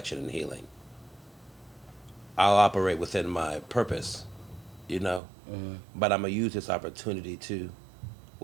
and healing. I'll operate within my purpose, but I'm going to use this opportunity to,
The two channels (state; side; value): drops out; left; at 5.2 s